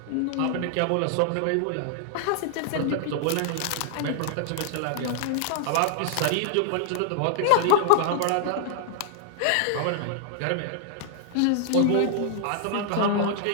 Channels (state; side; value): different; both; correlation -0.01